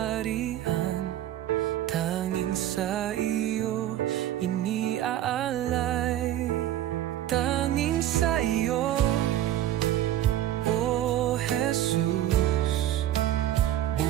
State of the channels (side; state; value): left; quieter; 12.6 dB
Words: Tanging sa iyo iniaalay. Tanging sa iyo, O Jesus.